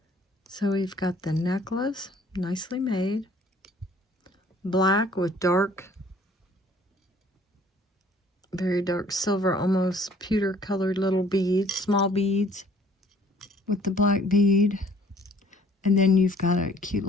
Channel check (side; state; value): both; normal; correlation 0.56